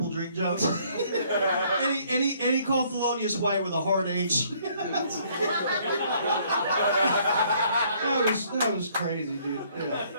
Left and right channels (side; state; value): both; inverted; correlation -0.63